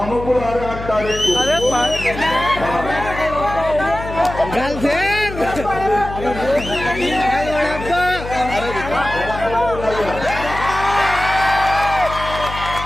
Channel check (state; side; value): noise; left; hum, 10 dB below the sound